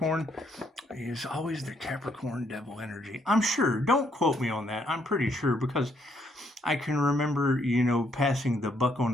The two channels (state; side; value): normal; both; correlation 0.71